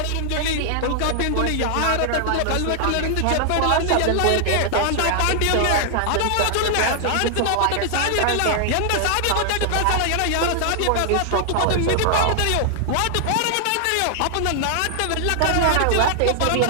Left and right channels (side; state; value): both; different; correlation 0.00